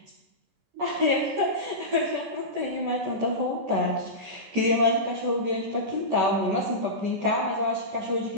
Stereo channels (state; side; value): late; left; 14 ms